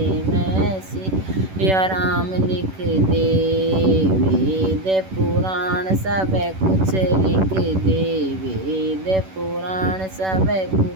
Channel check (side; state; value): left; late; 11 ms